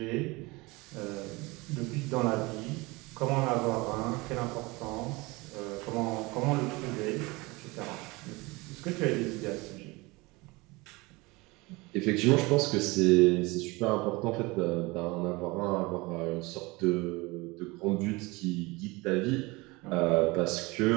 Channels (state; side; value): quieter; left; 23.9 dB